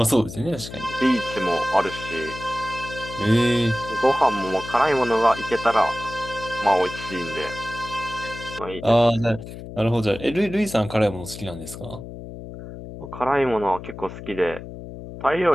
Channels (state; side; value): noise; left; hum, 12 dB below the sound